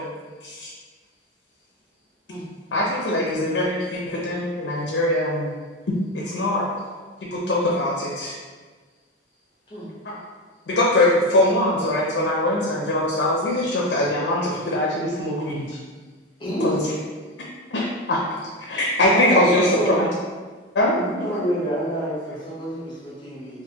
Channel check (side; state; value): both; normal; correlation 0.14